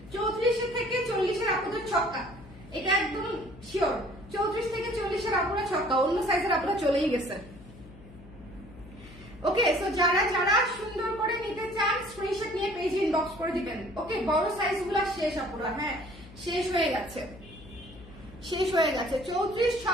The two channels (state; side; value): noise; left; hum, 19 dB below the sound